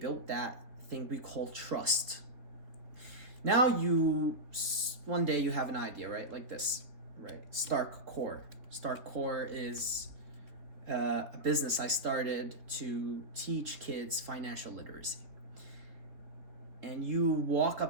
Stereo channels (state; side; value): late; left; 3.6 ms